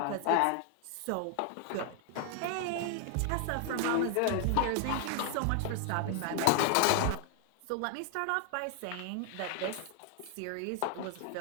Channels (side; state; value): both; different; correlation 0.00